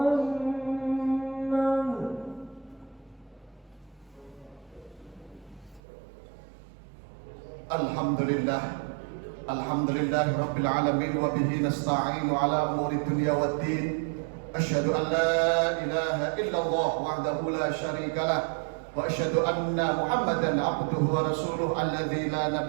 Alhamdulillah Rabbil Alamin wa bihi nasta'inu ala umuri dunya waddin. Asyhadu an la ilaha illallah wahdahu la syarika lah wa asyhadu anna Muhammadan abduhu wa rasuluh alladzi la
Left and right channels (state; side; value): drops out; left; at 5.8 s